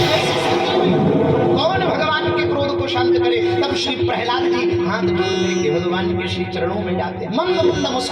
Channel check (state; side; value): identical; both; correlation 1.00